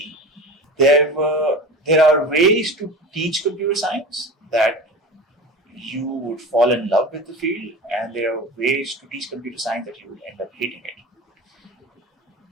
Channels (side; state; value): both; normal; correlation 0.33